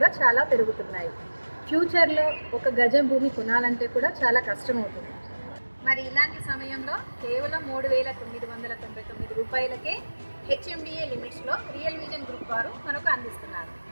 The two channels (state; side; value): inverted; both; correlation -1.00